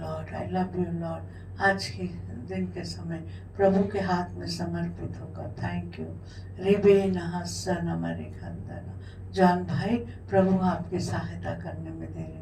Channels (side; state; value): both; identical; correlation 1.00